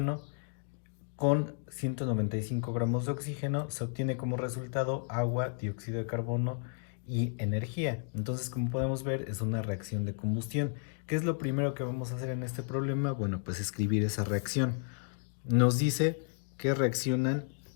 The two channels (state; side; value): silent; right; 56 dB below the other